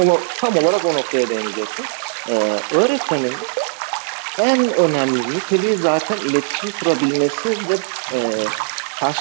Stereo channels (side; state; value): left; silent; 66 dB below the other